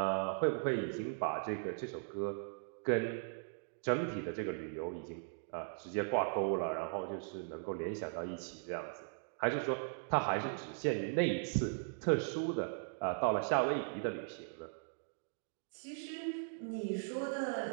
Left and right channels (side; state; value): left; silent; digital silence